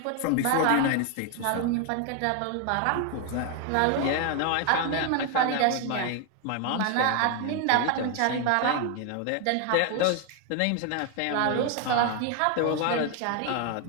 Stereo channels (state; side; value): different; both; correlation 0.01